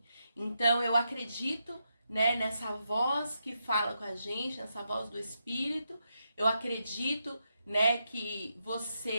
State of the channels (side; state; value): both; inverted; correlation -0.83